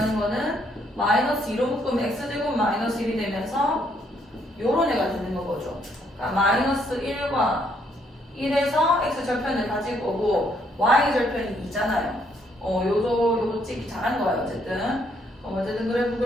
거는 마이너스 2로 묶으면 x제곱 마이너스 1이 되면서 요런 애가 되는 거죠. 마이너스 1과 1에서 x 절편을 가질 거고 y 절편이 2잖아요. 요거 찍기 잘한 거예요. 어쨌든 그래프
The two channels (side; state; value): both; normal; correlation 0.71